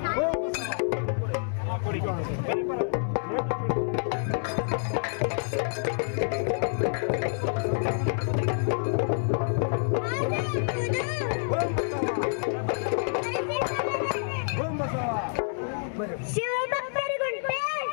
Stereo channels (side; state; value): right; silent; digital silence